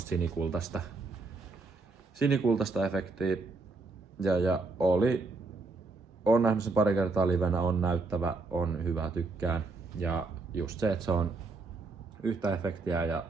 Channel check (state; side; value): quieter; left; 3.6 dB